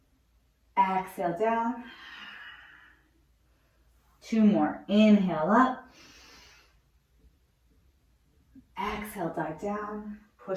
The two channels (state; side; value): identical; both; correlation 1.00